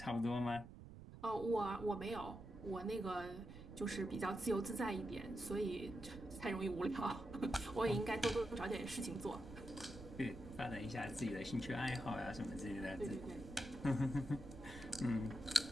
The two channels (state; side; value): noise; right; rumble, 13 dB below the sound